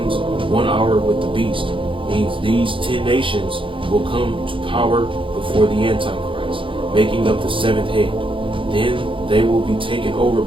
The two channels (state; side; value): late; left; 0.25 ms